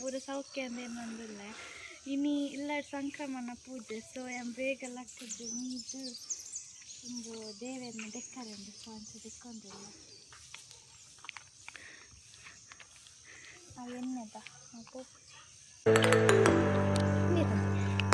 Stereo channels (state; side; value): identical; both; correlation 1.00